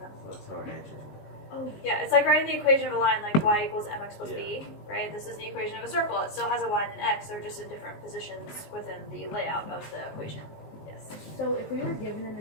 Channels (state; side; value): late; right; 19 ms